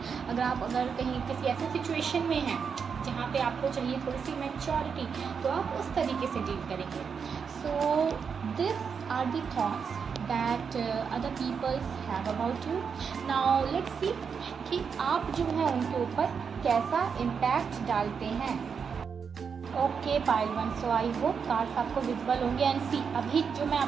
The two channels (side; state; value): left; quieter; 6.3 dB